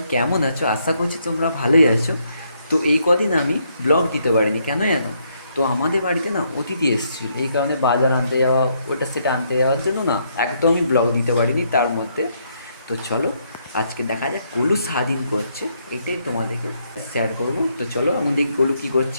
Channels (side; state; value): both; inverted; correlation -0.74